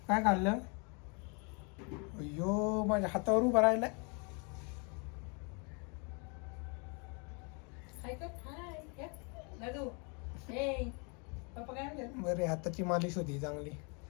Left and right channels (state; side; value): quieter; right; 34.5 dB